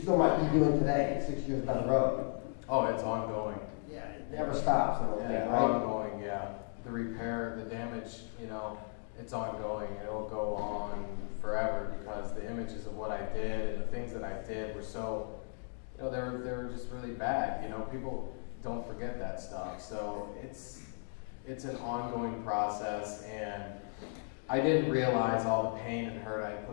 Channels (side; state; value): right; silent; 54 dB below the other